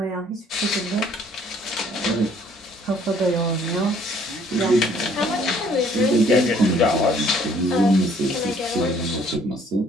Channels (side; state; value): both; normal; correlation 0.60